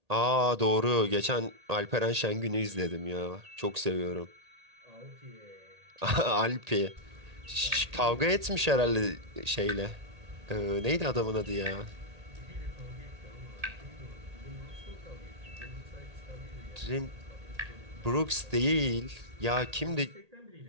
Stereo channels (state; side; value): late; left; 1.8 ms